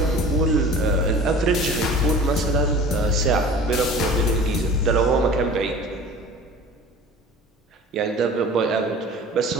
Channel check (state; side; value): normal; both; correlation 0.42